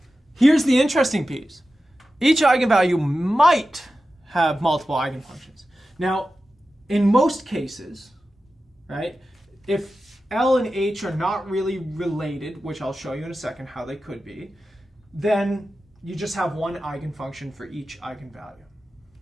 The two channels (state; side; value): normal; both; correlation 0.93